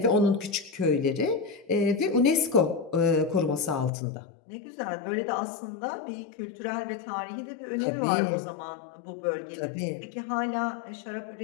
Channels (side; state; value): right; drops out; at 3.9 s